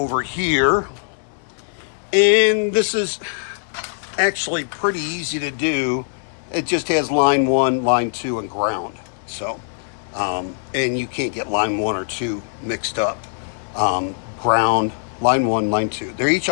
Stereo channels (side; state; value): right; silent; 65 dB below the other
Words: here. And this is actually pretty easy to do. It just has line 1, line 2, and ground. So, and you can't get line 1 or 2 mixed up. Ground, line 1, line 2. They're each